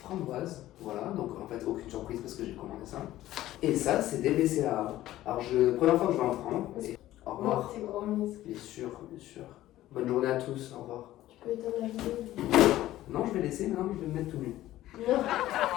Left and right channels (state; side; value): quieter; right; 14.7 dB